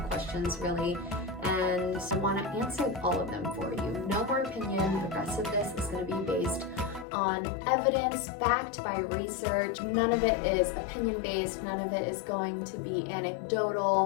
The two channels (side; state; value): right; drops out; at 7.1 s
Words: questions, really, and I want to answer all of them for you. No more opinion. The rest of this is going to be based on evidence, backed by research. None of it is opinion-based. None of it is going to be